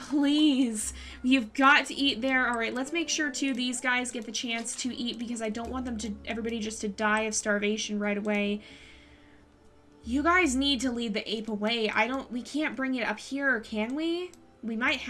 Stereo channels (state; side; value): identical; both; correlation 1.00